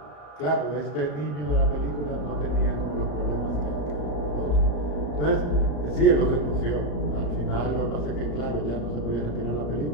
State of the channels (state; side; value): late; right; 34 ms